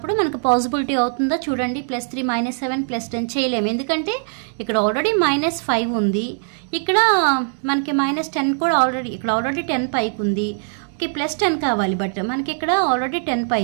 మనకు పాజిబిలిటీ అవుతుందా చూడండి. +3 -7 + 10 చేయలేము, ఎందుకంటే ఇక్కడ ఆల్రెడీ -5 ఉంది, ఇక్కడ మనకి -10 కూడా ఆల్రెడీ 10 పైకి ఉంది. ఓకే, +10 కావాలి, బట్ మనకి ఇక్కడ ఆల్రెడీ 10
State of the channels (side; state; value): left; silent; 65 dB below the other